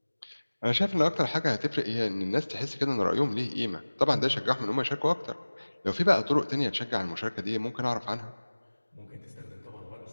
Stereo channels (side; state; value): both; inverted; correlation -1.00